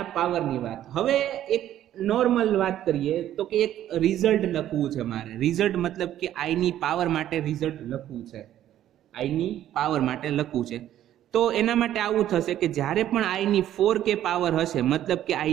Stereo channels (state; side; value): quieter; left; 12.0 dB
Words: પાવરની વાત. હવે એક નોર્મલ વાત કરીએ તો કે એક રિઝલ્ટ લખવું છે મારે. રિઝલ્ટ મતલબ કે આઈની પાવર માટે રિઝલ્ટ લખવું છે. આઈની પાવર માટે લખવું છે તો એના માટે આવું થશે કે જ્યારે પણ આઈની 4k પાવર હશે, મતલબ કે